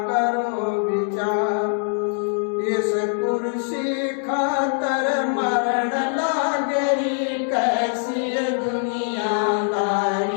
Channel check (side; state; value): right; silent; 64 dB below the other